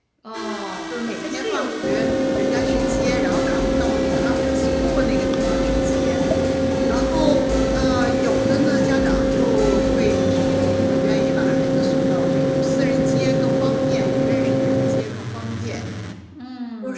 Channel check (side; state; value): both; identical; correlation 1.00